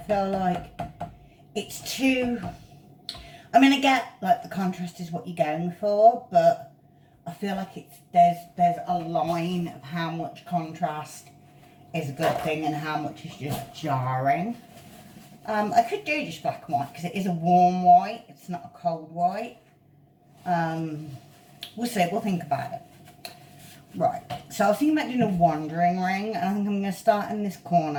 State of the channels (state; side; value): identical; both; correlation 1.00